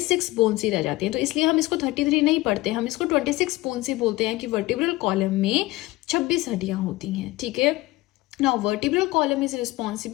बोन्स ही रह जाती हैं। तो इसलिए हम इसको 33 नहीं पढ़ते, हम इसको 26 बोन्स ही बोलते हैं कि वर्टिब्रल कॉलम में 26 हड्डियां होती हैं। ठीक है। Now vertebral column is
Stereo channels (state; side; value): quieter; right; 19.3 dB